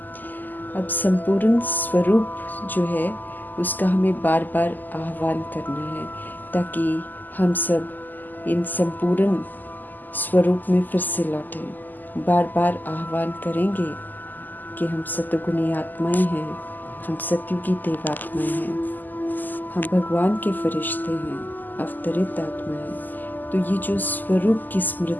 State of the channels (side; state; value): right; late; 0.086 ms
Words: अब संपूर्ण स्वरूप जो है उसका हमें बार बार आह्वान करना है ताकि हम सब इन संपूर्ण स्वरूप में फिर से लौटें। बार बार आह्वान करेंगे कि हम सतगुणी आत्माएं हैं, हम सतयुगी देवात्माएं हैं, हम भगवान के फरिश्ते हैं, अवतरित आत्माएं। तो ये जो स्वरूप की